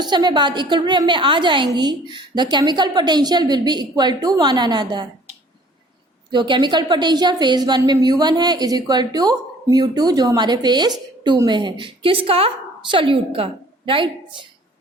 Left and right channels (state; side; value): normal; both; correlation 0.53